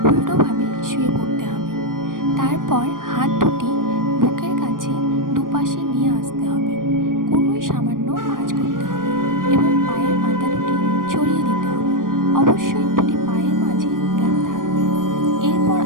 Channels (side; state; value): left; late; 0.90 ms